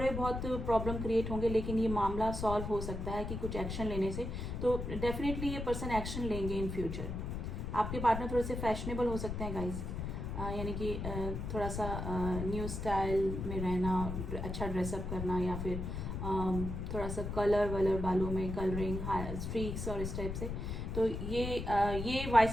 बहुत प्रॉब्लम क्रिएट होंगे लेकिन ये मामला सॉल्व हो सकता है कि कुछ एक्शन लेने से, तो डेफिनेटली ये पर्सन एक्शन लेंगे इन फ्यूचर। आपके पार्टनर थोड़े से फैशनेबल हो सकते हैं गाइस, यानी कि थोड़ा सा न्यू स्टाइल में रहना, अच्छा ड्रेसअप करना, या फिर थोड़ा सा कलर वलर बालों में कलरिंग, स्ट्रीक्स और इस टाइप से। तो ये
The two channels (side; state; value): left; noise; rumble, 4 dB below the sound